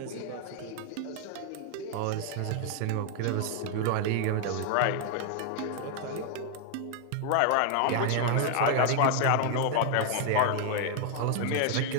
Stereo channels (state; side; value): different; both; correlation 0.00